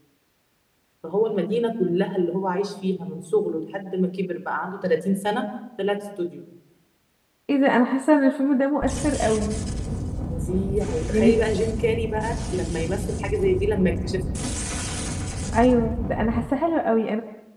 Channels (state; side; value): identical; both; correlation 1.00